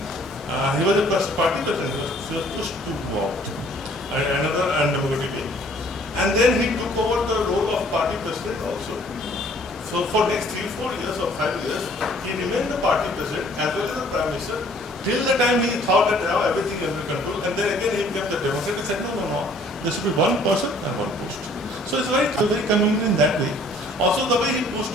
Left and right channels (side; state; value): both; normal; correlation 0.58